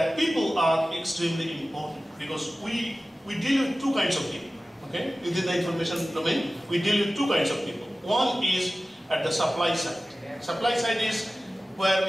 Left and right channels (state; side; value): normal; both; correlation 0.96